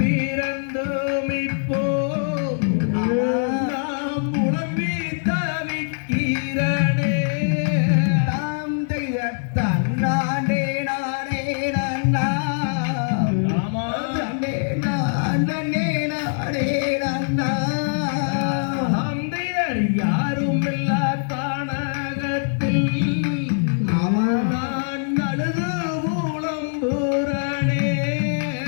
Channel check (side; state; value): right; silent; 64 dB below the other